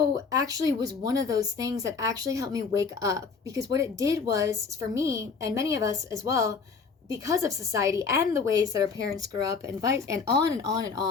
actually was one of those things that actually helped me wake up, because what it did was, for me and many of us as well, because of society and the ways that our parents grew up, and on and on and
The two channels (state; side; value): quieter; right; 5.2 dB